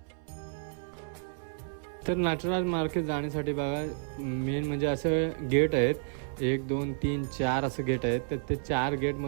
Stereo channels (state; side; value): silent; left; 57 dB below the other